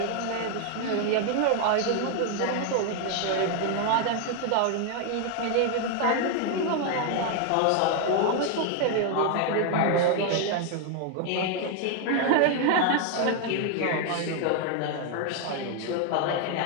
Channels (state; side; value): different; both; correlation 0.00